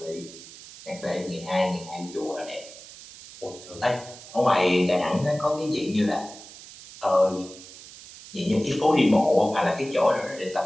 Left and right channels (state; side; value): noise; right; hiss, 17 dB below the sound